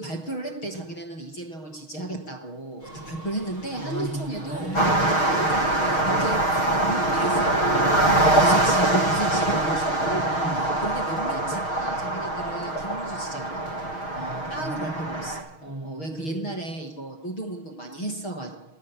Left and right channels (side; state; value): right; late; 6.4 ms